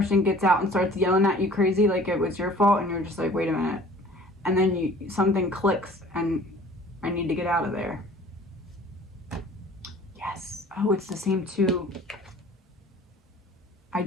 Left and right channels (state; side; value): normal; both; correlation 0.49